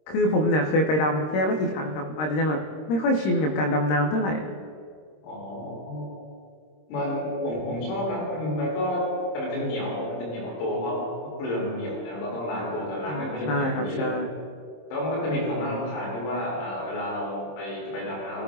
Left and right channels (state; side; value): late; right; 26 ms